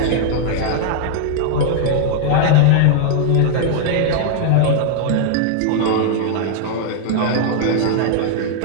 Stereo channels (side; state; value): both; different; correlation -0.01